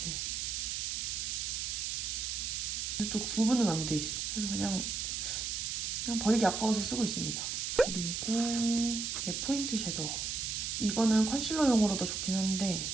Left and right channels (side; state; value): right; noise; hiss, 2 dB below the sound